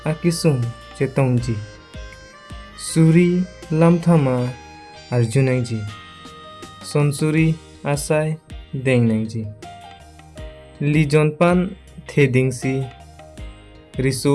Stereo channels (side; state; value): both; identical; correlation 1.00